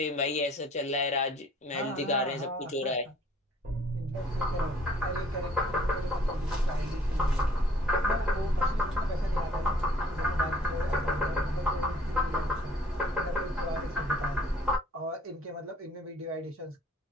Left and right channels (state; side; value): normal; both; correlation 0.57